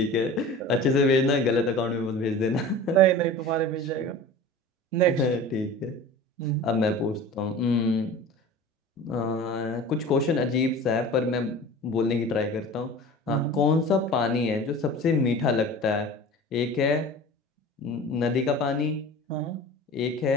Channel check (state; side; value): normal; both; correlation 0.38